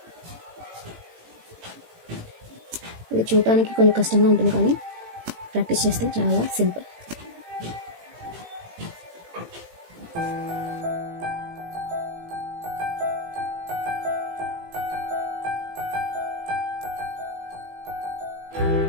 ఇది చూడటానికి కొంచెం కష్టంగా ఉంటుంది, కానీ ప్రాక్టీస్ చేస్తే చాలా సింపుల్.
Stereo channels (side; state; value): left; late; 18 ms